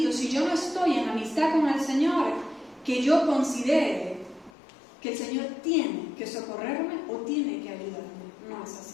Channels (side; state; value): right; drops out; at 4.5 s